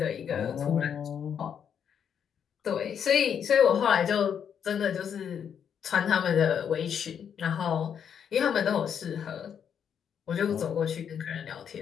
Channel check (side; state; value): right; quieter; 8.0 dB